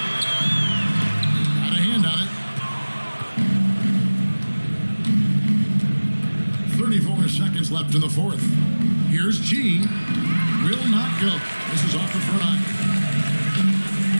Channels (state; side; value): inverted; both; correlation -1.00